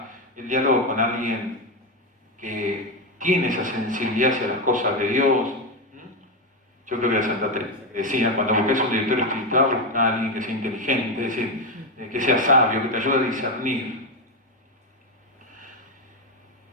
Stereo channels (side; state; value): both; normal; correlation 0.10